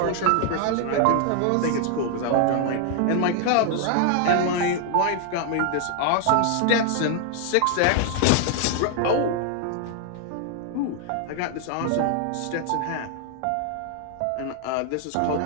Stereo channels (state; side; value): different; both; correlation 0.00